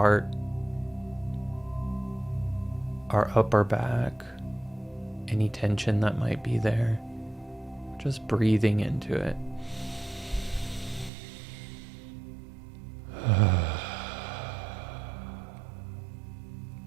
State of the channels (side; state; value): left; drops out; at 11.1 s